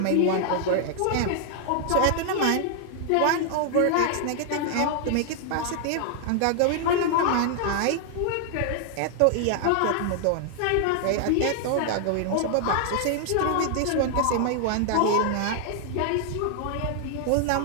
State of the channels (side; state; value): both; different; correlation 0.00